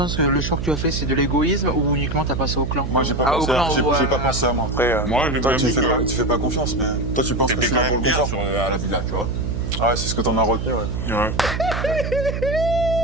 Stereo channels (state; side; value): noise; right; hum, 3 dB below the sound